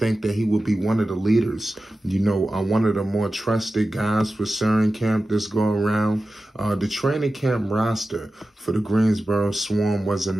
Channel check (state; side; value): normal; both; correlation 0.94